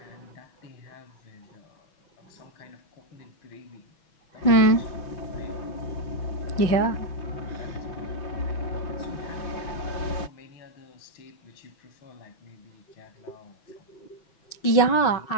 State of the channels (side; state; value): right; late; 6.1 ms